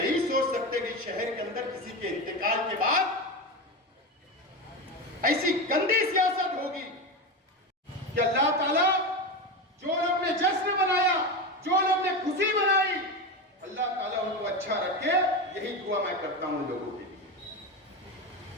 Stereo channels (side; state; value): both; normal; correlation 0.19